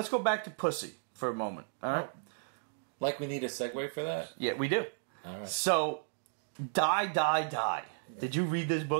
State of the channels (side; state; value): left; silent; digital silence